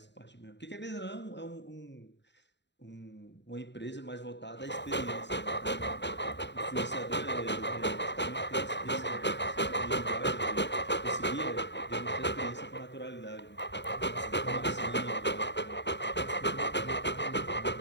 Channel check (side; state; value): right; late; 0.52 ms